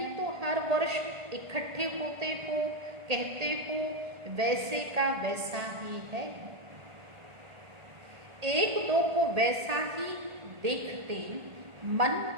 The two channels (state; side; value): late; left; 1.8 ms